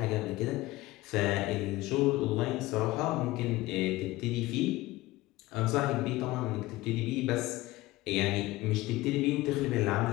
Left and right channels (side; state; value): right; quieter; 18.9 dB